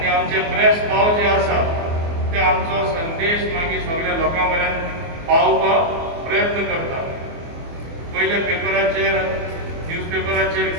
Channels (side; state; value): left; late; 24 ms